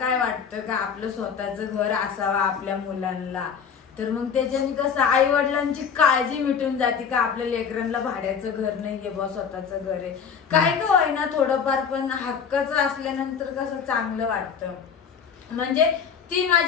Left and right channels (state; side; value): quieter; right; 6.7 dB